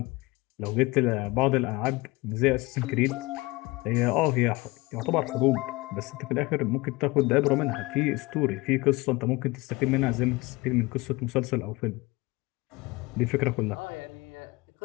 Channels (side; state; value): right; quieter; 22.7 dB